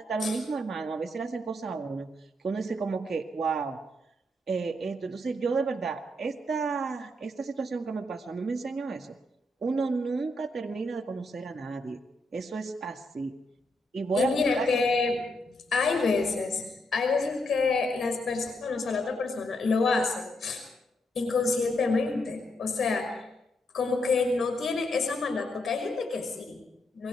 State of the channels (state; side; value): normal; both; correlation 0.79